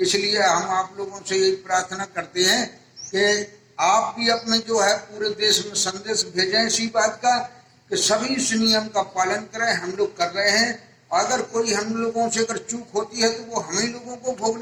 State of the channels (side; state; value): both; identical; correlation 1.00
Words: हम आप लोगों से यही प्रार्थना करते हैं कि आप भी अपने जो है पूरे देश में संदेश भेजें इसी बात का कि सभी इस नियम का पालन करें। हम लोग कर रहे हैं। अगर कोई हम लोगों से अगर चूक होती है तो वो हम ही लोगों को